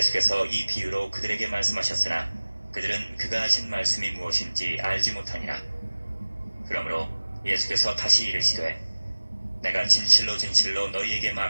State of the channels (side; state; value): both; inverted; correlation -1.00